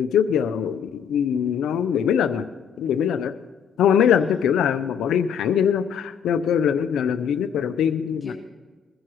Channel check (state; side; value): quieter; right; 7.9 dB